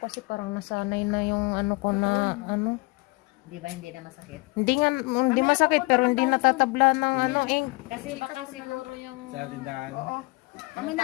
parang nasanay na yung ano ko na ano. Di ba hindi na masakit? Hindi masakit pero hindi natatabla ng ano ink. Kasi baka siguro yung... Sa tindahan. Oo. Ano Kami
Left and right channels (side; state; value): right; quieter; 25.8 dB